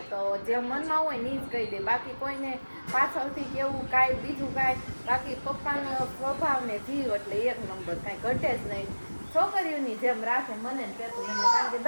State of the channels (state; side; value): inverted; both; correlation -1.00